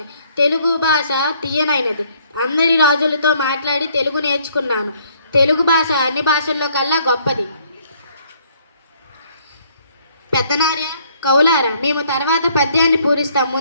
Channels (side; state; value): both; inverted; correlation -0.64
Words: తెలుగు భాష తీయనైనది. అందరి రాజులతో మాట్లాడి తెలుగు నేర్చుకున్నాను. తెలుగు భాష అన్ని భాషల్లో కల్లా గొప్పది. పెద్దనార్య కౌలారా, మేము తర్వాత పద్యాన్ని పూరిస్తాం.